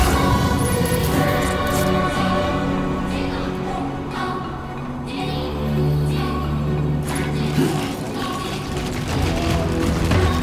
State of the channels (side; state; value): both; identical; correlation 1.00